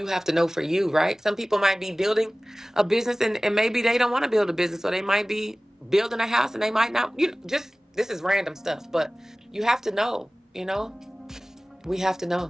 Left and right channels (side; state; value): both; normal; correlation 0.98